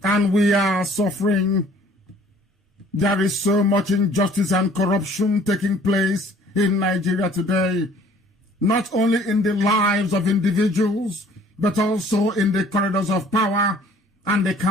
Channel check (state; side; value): normal; both; correlation 0.55